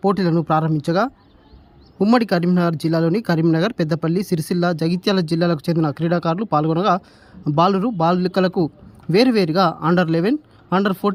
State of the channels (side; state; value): both; identical; correlation 1.00